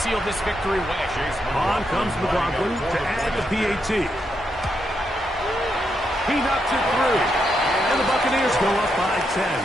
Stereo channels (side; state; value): both; normal; correlation 0.81